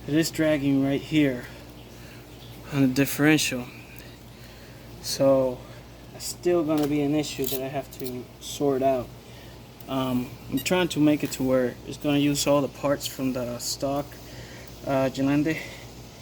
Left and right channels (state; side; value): identical; both; correlation 1.00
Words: it is dragging right here on the differential. So it's still going to be an issue that I have to sort out. I'm trying to make it to where it's going to use all the parts from the stock Gelande,